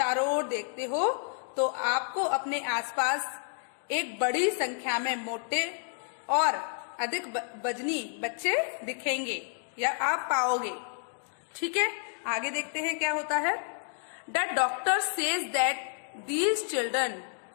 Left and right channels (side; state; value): right; silent; 58 dB below the other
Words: ओर देखते हो तो आपको अपने आसपास एक बड़ी संख्या में मोटे और अधिक वजनी बच्चे दिखेंगे या आप पाओगे। ठीक है, आगे देखते हैं क्या होता है। The doctor says that these children